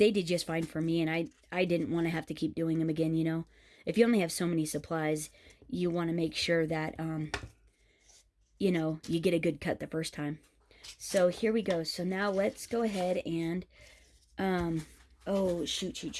did just fine for me, and I didn't want to have to keep doing them again, you know. If you only have so many supplies, you want to make sure that, you know, you get a good cut the first time. So here we go. So now let's go ahead and, oh,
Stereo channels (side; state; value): both; identical; correlation 1.00